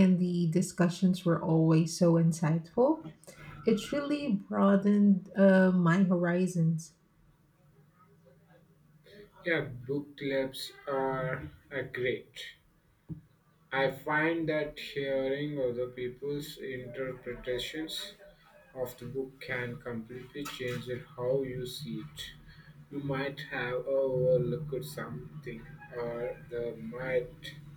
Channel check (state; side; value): identical; both; correlation 1.00